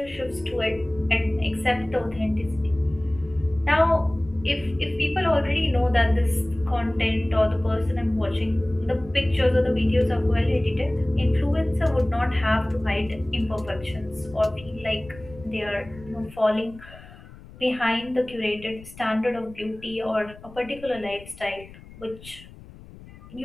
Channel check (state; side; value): noise; left; rumble, 19 dB below the sound